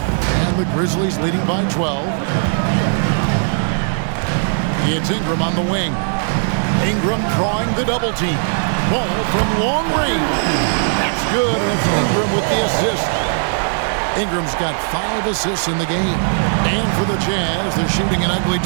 And the Grizzlies leading by 12. It's Ingram on the wing. Ingram drawing the double team. Ball from long range. That's good, and it's Ingram with the assist. Ingram's got 5 assists in the game. And for the Jazz, they're shooting an ugly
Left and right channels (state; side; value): silent; left; 67 dB below the other